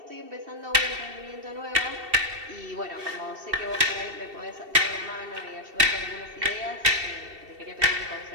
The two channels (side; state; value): left; late; 2.7 ms